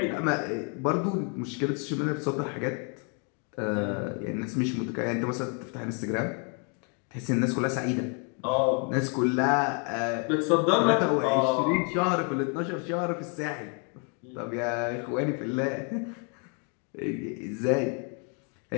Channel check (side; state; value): right; quieter; 38.7 dB